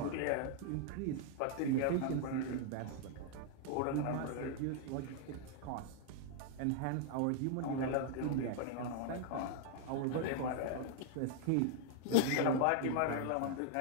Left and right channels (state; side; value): different; both; correlation -0.01